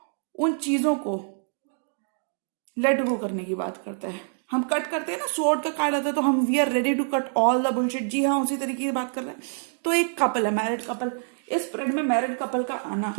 उन चीजों को लेट गो करने की बात करता है। हम कट करते हैं ना, स्वॉर्ड का कार्ड आता है तो हम we are ready to cut all the bullshit. जी हाँ, उसी तरीके की बात कर रहे हैं। तो एक कपल है, मैरिड कपल। इस स्प्रेड में मैरिड कपल का आना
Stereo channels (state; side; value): silent; left; 61 dB below the other